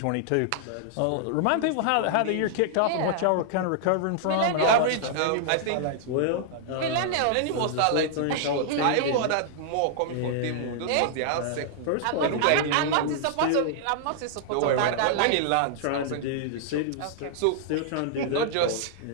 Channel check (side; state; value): both; different; correlation -0.01